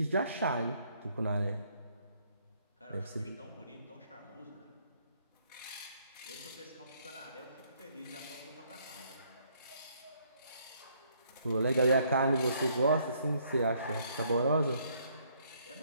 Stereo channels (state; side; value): inverted; both; correlation -0.67